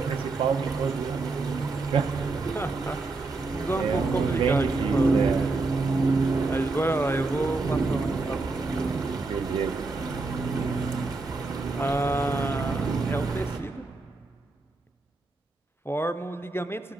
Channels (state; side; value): quieter; left; 3.5 dB